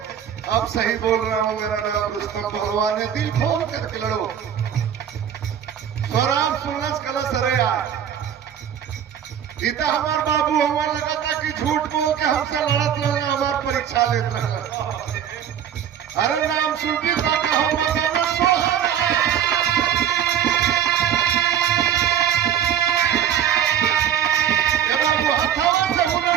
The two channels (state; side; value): quieter; left; 9.3 dB